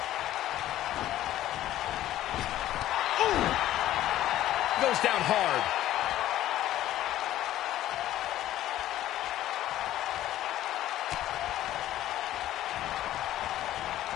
Ooh! Goes down hard.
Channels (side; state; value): right; quieter; 13.6 dB